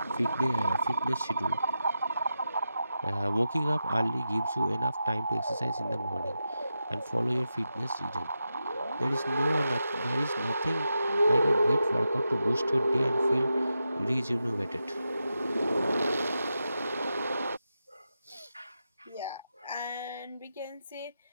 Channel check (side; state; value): both; inverted; correlation -0.88